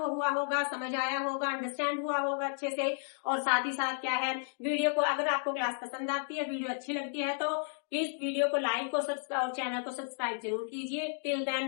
हुआ होगा, समझ आया होगा, अंडरस्टैंड हुआ होगा अच्छे से। और साथ ही साथ क्या है, वीडियो को, अगर आपको क्लास पसंद आती है, वीडियो अच्छी लगती है, तो प्लीज वीडियो को लाइक और चैनल को सब्सक्राइब जरूर कीजिए। Till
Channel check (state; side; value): silent; right; digital silence